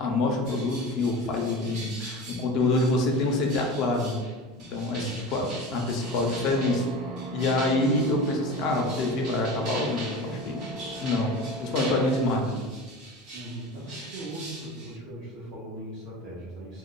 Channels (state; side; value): normal; both; correlation 0.32